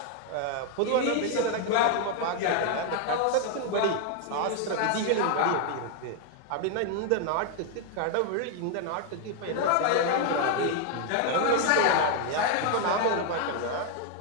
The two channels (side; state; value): both; different; correlation 0.00